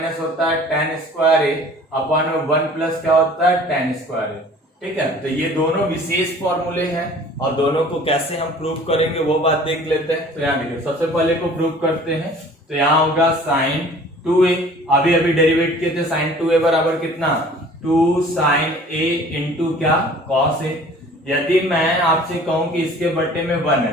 होता है tan स्क्वायर a अपॉन में 1 प्लस क्या होता है? tan square a। ठीक है, तो ये दोनों विशेष फॉर्मूले हैं, और दोनों को कैसे हम प्रूव करेंगे वो बात देख लेते हैं। तो यहाँ देखिए, सबसे पहले को प्रूव करते हैं। तो यहाँ होगा sin 2a, अभी डेरिवेट किए थे, sin 2a बराबर कितना? 2 sin a इंटू क्या? cos a। यदि मैं आपसे कहूं कि इसके बट्टे में 1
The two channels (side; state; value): both; normal; correlation 0.49